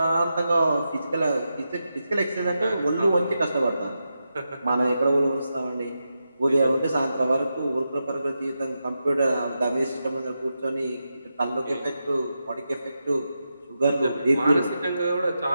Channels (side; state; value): both; inverted; correlation -0.88